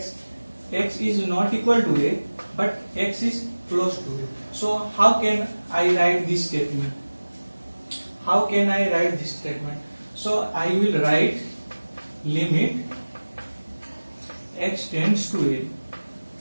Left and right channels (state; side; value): inverted; both; correlation -1.00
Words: is not equal to a, but x is close to a. So how can I write this statement? So I will write limit x tends to a.